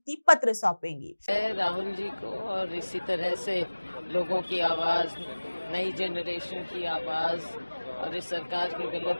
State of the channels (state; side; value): inverted; both; correlation -1.00